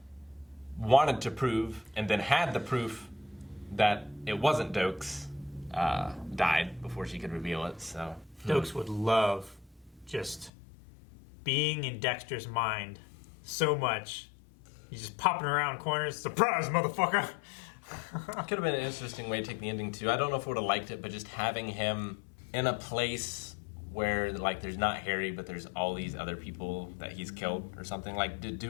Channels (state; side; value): drops out; right; at 10.5 s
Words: wanted to prove and then had the proof that it wasn't Dokes, died before she could reveal it. So Dokes would love just being in Dexter's mind so much. He's just popping around corners. Surprise, motherfucker! could have been an interesting way to take the ending too. I don't know if I would have liked it, but just having him in a place where like there's not Harry, but there's all these other people that he's killed or something. Like, to